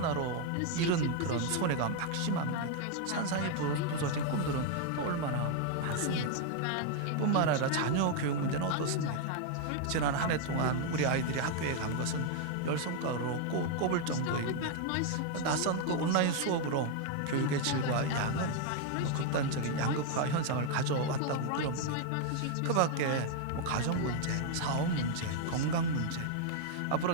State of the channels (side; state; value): both; different; correlation 0.00